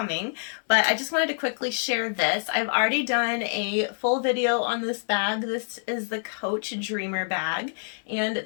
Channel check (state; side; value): silent; right; digital silence